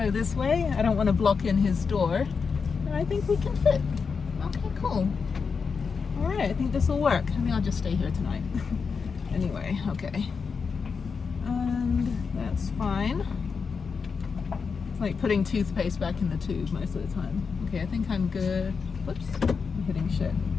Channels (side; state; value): right; quieter; 5.4 dB